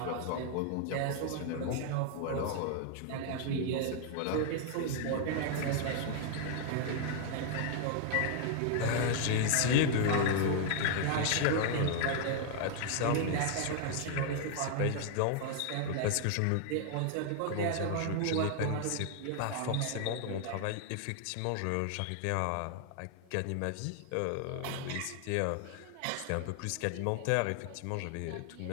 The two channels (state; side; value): different; both; correlation 0.00